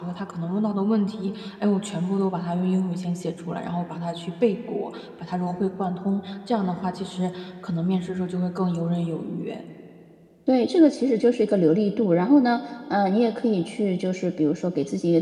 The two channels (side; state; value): both; identical; correlation 1.00